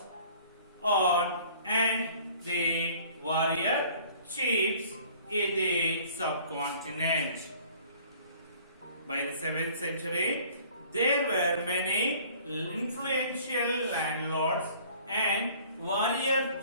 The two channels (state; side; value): inverted; both; correlation -0.52